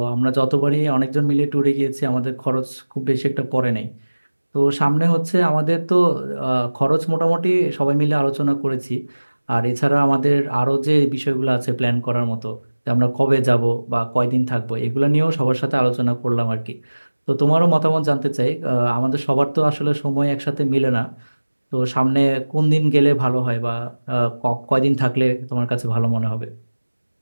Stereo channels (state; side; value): inverted; both; correlation -1.00